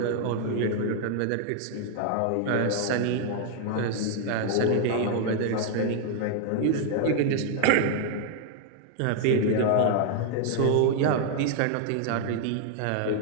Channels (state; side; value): different; both; correlation 0.00